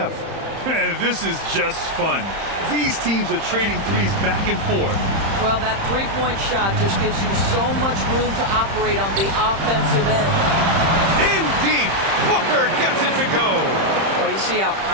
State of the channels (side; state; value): left; late; 30 ms